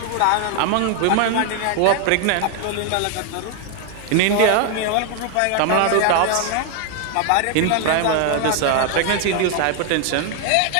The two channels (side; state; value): both; different; correlation 0.00